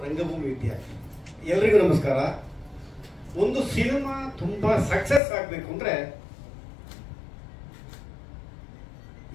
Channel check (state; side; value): drops out; right; at 5.2 s